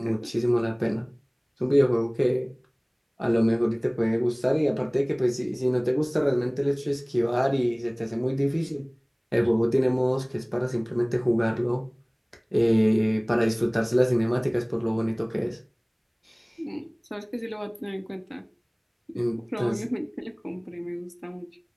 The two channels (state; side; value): identical; both; correlation 1.00